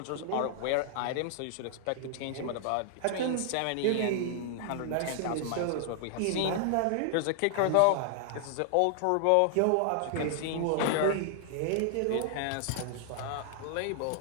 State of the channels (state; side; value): different; both; correlation -0.01